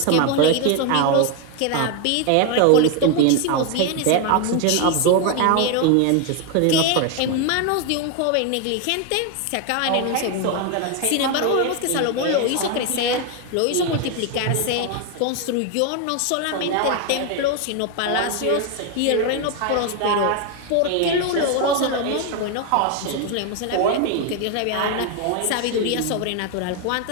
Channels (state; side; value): different; both; correlation 0.01